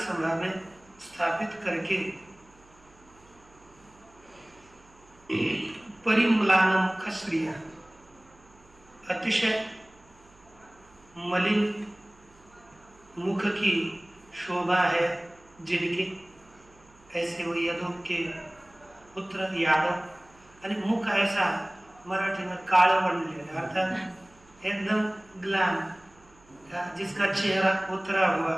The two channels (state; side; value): noise; right; hum, 28 dB below the sound